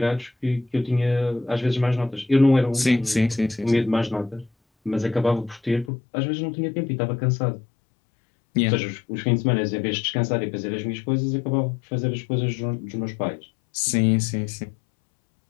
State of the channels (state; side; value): drops out; right; at 5.9 s